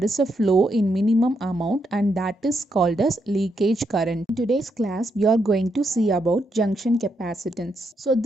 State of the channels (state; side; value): normal; both; correlation 0.80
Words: is a flow in minimum amount, and that is called as leakage current. In today's class, we are going to see about junction capacitance. So